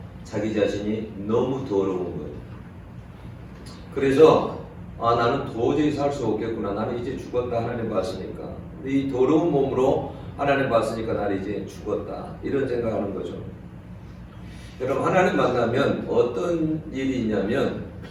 자기 자신이 너무 더러운 거예요. 그래서 나는 도저히 살 수 없겠구나. 나는 이제 죽었다. 하나님 봤으니까. 이 더러운 몸으로 하나님 봤으니까 나는 이제 죽었다. 이런 생각하는 거죠. 여러분 하나님 만나면 어떤 일이 있냐면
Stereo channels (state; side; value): identical; both; correlation 1.00